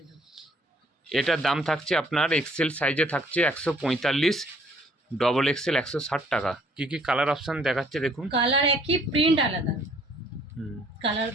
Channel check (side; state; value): both; normal; correlation 0.60